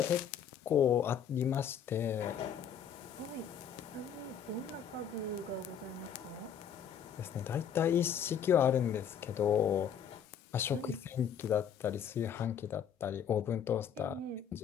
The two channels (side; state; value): right; quieter; 8.1 dB